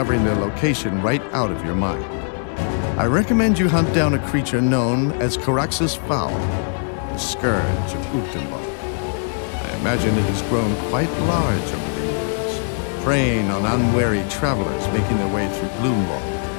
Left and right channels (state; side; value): silent; right; digital silence